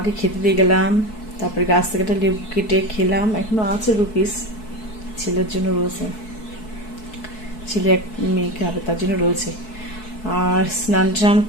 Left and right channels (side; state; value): right; late; 4.6 ms